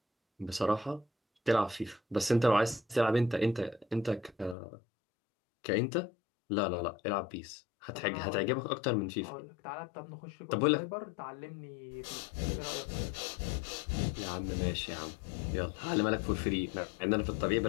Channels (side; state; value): right; drops out; at 4.5 s